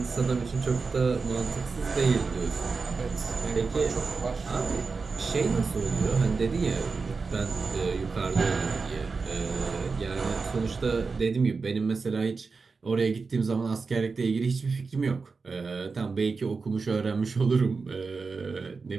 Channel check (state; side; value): quieter; left; 4.5 dB